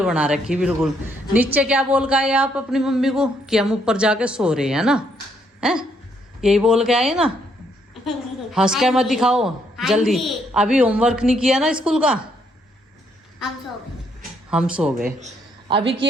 बना रखी बिल्कुल। नीचे क्या बोल के आए आप अपनी मम्मी को कि हम ऊपर जाके सो रहे हैं ना, हैं? यही बोल के आए ना, हंस के मत दिखाओ जल्दी। अभी होमवर्क नहीं किया ना स्कूल का? हम सो गए। अभी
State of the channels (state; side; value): normal; both; correlation 0.72